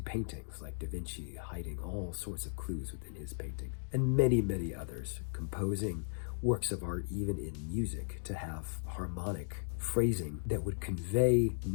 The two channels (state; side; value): silent; right; digital silence